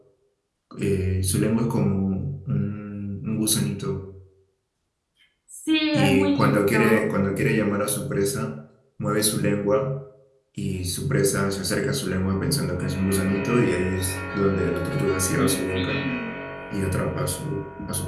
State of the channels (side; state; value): both; identical; correlation 1.00